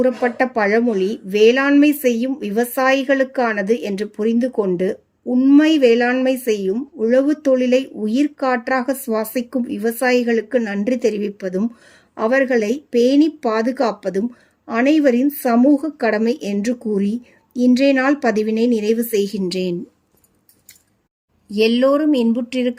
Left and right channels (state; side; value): identical; both; correlation 1.00